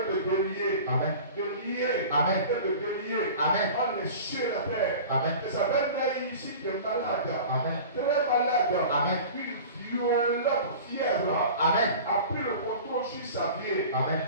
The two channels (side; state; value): both; inverted; correlation -0.38